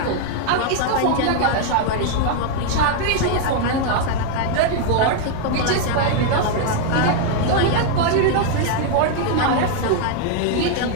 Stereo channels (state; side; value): different; both; correlation 0.00